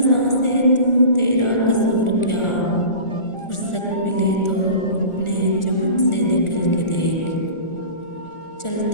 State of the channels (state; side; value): late; right; 1.4 ms